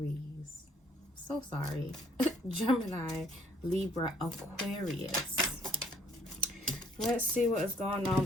So sorry. Gemini, Libra, Aquarius. Let's see what is going on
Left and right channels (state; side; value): normal; both; correlation 0.63